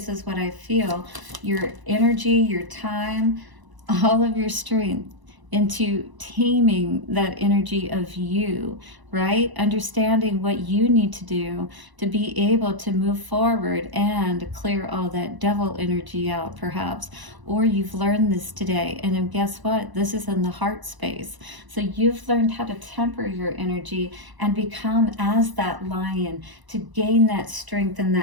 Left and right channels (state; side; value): late; left; 1.0 ms